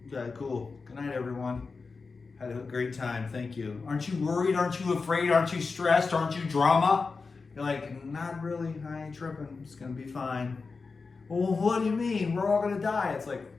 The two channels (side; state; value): right; quieter; 4.4 dB